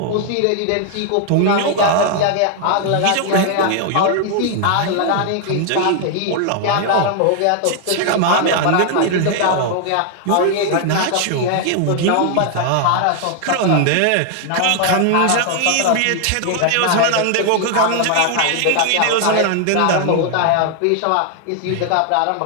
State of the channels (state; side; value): different; both; correlation 0.00